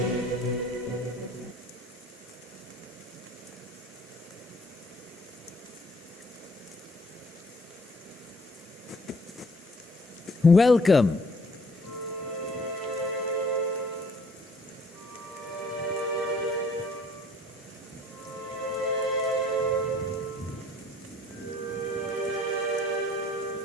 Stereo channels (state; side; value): normal; both; correlation 0.59